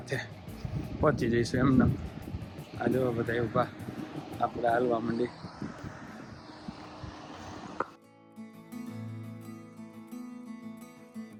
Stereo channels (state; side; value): identical; both; correlation 1.00